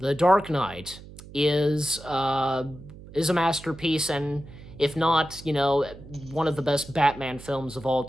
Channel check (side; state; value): right; noise; hum, 17 dB below the sound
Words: Dark Knight is a masterpiece, and if not, one of the best Batman films of all